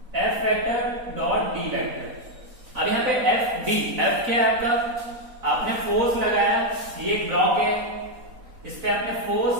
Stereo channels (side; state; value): left; late; 4.0 ms